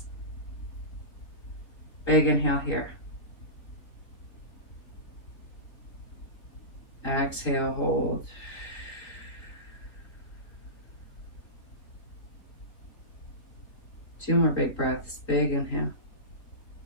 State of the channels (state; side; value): late; right; 3.8 ms